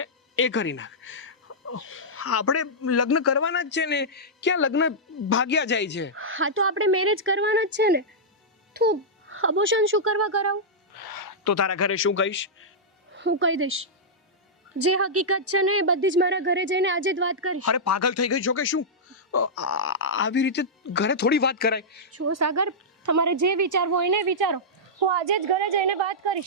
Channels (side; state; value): both; normal; correlation -0.11